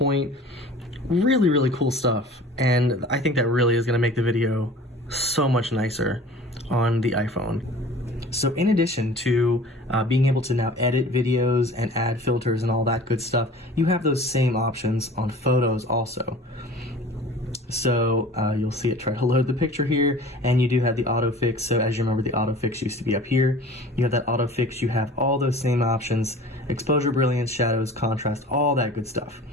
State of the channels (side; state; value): both; normal; correlation 0.44